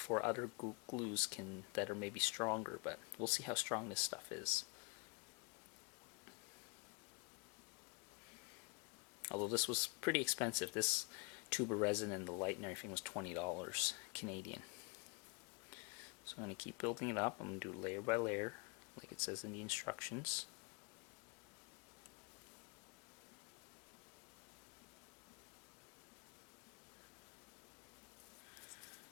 other glues that are maybe stronger, but we'll see how strong this stuff is. Although this was pretty expensive. This tube of resin and the light and everything was $20 Canadian. So I'm going to keep building it up. I'm going to do layer by layer like it says in the instructions.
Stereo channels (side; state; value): right; quieter; 32.5 dB